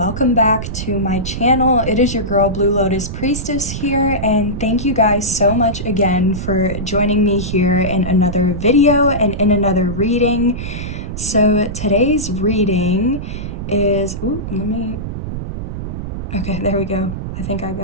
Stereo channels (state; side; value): noise; right; rumble, 6 dB below the sound